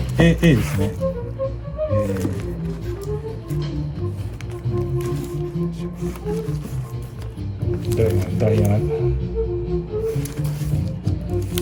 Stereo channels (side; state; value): both; identical; correlation 1.00